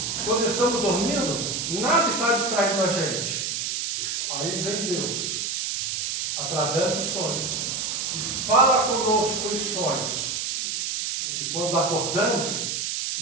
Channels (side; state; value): right; noise; hiss, 2 dB below the sound